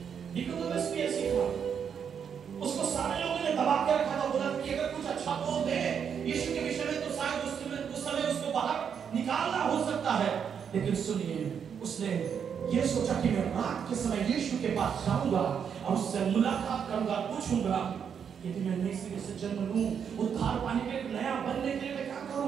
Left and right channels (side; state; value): left; quieter; 7.4 dB